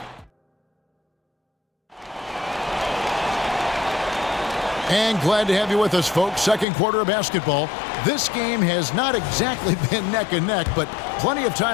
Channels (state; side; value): drops out; right; at 6.7 s